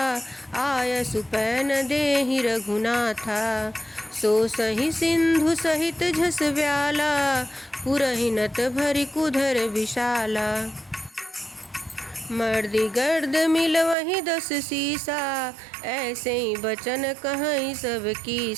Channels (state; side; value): drops out; left; at 14.0 s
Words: आय सुपैन देहि रघुनाथा। सो सही सिंधु सहित झस व्याला, पुरहि नत भरि कुधर विशाला। मर्दि गर्द मिल वही 10 सीसा, ऐसे ही बचन कहई सब